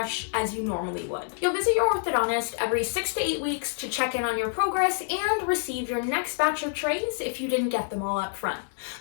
as you normally would. You'll visit your orthodontist every 6 to 8 weeks to check in on your progress and receive your next batch of trays if you didn't get them all up front.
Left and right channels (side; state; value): right; silent; 60 dB below the other